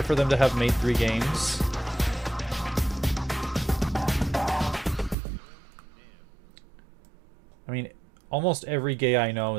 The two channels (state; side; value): drops out; left; at 5.2 s